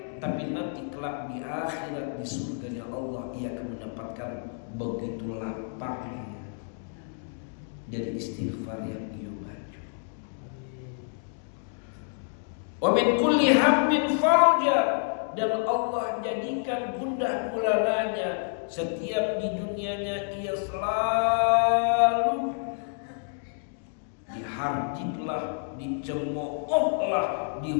tapi nanti kelak di akhirat di surganya Allah ia akan mendapatkan begitu lapangnya dari istighfar yang ia baca. Wa min kulli hammin farja, dan Allah jadikan gundah gulananya. Setiap di dunianya ia selalu diharjitlah, dicemoohlah,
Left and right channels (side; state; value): right; silent; digital silence